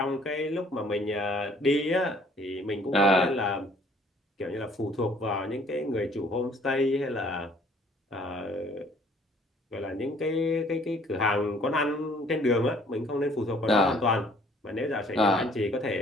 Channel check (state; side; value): normal; both; correlation 0.59